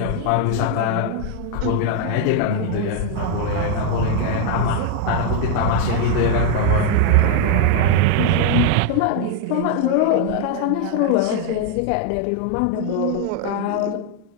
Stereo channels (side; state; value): both; different; correlation 0.00